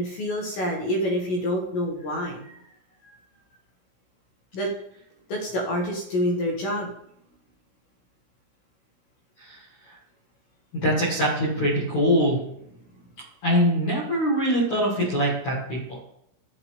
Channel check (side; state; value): right; late; 16 ms